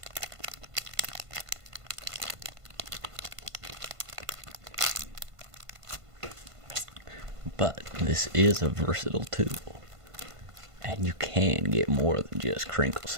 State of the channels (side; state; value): left; late; 1.5 ms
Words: But this is a versatile tool, and you can get more than just crinkle